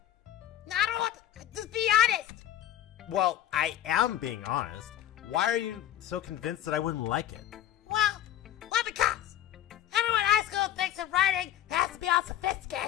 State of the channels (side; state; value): right; quieter; 12.0 dB